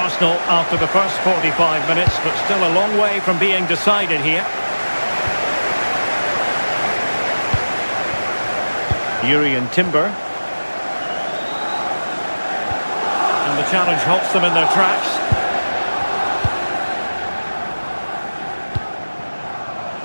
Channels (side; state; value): both; inverted; correlation -1.00